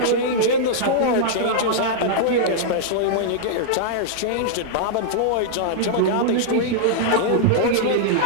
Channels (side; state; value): both; different; correlation -0.02